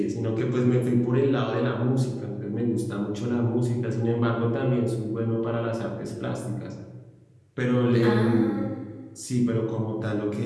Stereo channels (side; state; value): both; identical; correlation 1.00